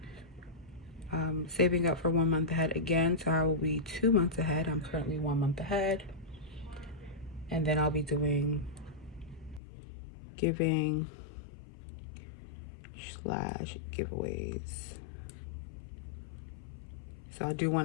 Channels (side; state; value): right; drops out; at 9.6 s